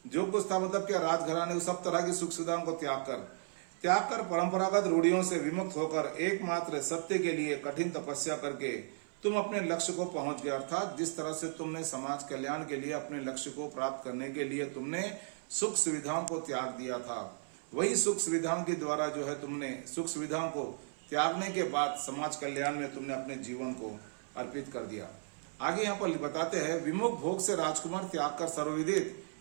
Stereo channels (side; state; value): left; silent; 54 dB below the other